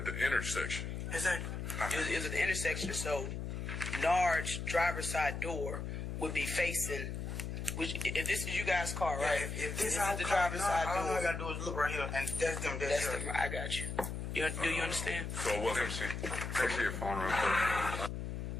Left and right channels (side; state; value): left; noise; hum, 4 dB below the sound